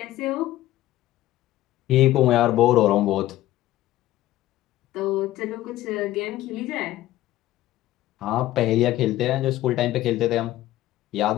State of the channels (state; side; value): quieter; right; 15.1 dB